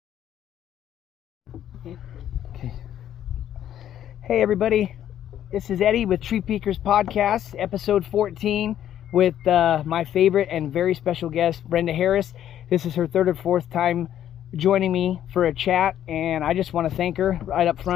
Okay. Hey everybody, this is Eddie with Tree Peakers Podcast, episode 14, with my favorite and very special guest, Brenda Harris. This is her third or fourth time joining me for a chat, and I just want to thank her right up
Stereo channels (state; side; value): quieter; right; 10.9 dB